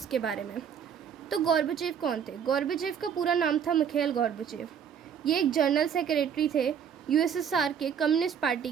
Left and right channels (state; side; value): quieter; left; 7.8 dB